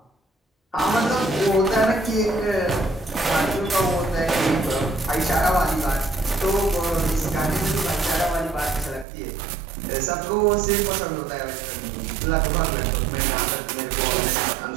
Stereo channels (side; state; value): left; drops out; at 9.1 s